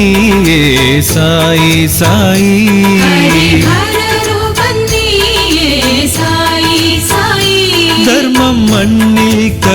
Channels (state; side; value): identical; both; correlation 1.00